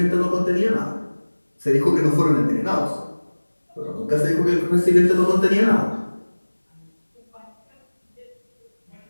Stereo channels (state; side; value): inverted; both; correlation -1.00